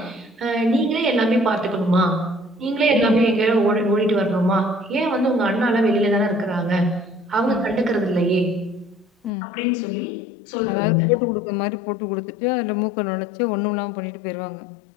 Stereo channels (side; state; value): right; drops out; at 9.3 s